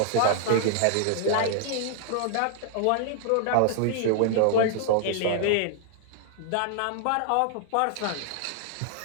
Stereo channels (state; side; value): different; both; correlation -0.01